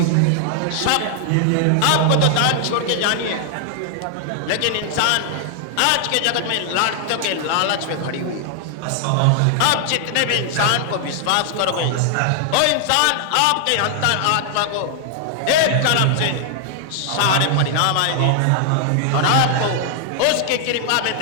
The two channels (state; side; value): different; both; correlation 0.00